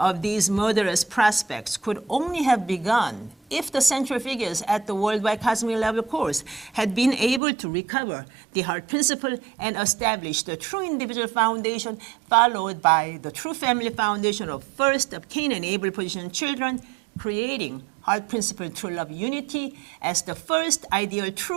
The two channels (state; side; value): drops out; left; at 7.4 s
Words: these murderous prospects could only have begun if the central figures at the worldwide cosmic level course had been able to recover the heart principle and establish the true individual foundation, followed by the true family foundation of first of Cain and Abel position children, creating heart principle true love unity as the first ideal